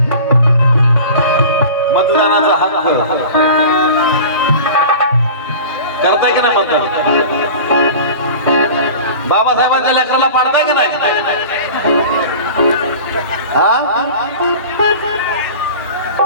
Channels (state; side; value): inverted; both; correlation -0.38